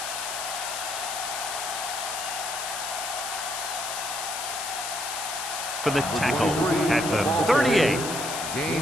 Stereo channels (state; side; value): noise; left; hiss, 5 dB below the sound